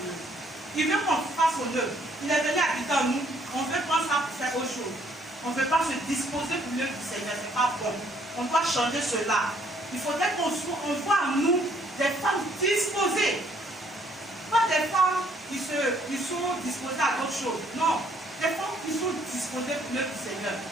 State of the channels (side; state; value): both; normal; correlation 0.65